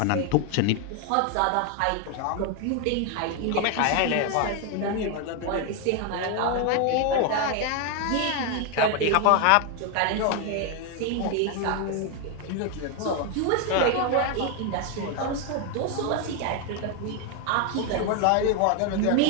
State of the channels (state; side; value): different; both; correlation 0.01